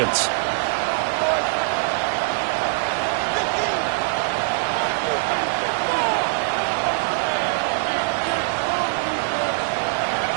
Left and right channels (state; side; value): silent; left; 64 dB below the other